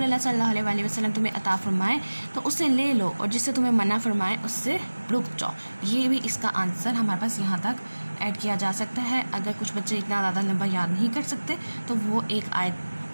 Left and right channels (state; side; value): inverted; both; correlation -1.00